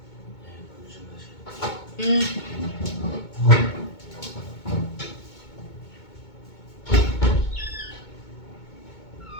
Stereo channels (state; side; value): late; right; 2.2 ms